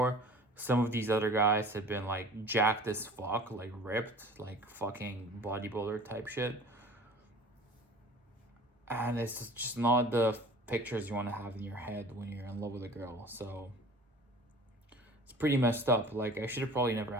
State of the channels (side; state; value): both; normal; correlation 0.44